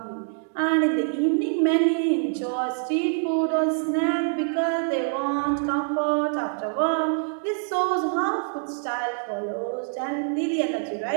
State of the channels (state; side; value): silent; left; 62 dB below the other